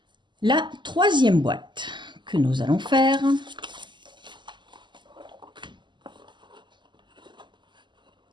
La troisième boîte que nous allons faire.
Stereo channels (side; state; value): left; late; 0.22 ms